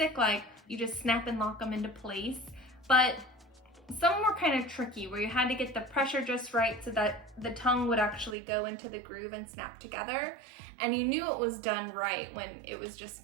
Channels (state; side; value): drops out; left; at 8.3 s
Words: like you just snap and lock them into place, but some were kind of tricky where you had to get the pressure just right so that the tongue would actually go into the groove and snap together. And you knew it was done right when it was